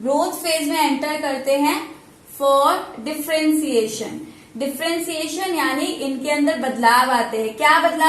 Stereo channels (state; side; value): identical; both; correlation 1.00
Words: फेज में एंटर करते हैं फॉर डिफरेंशिएशन। डिफरेंशिएशन यानी इनके अंदर बदलाव आते हैं। क्या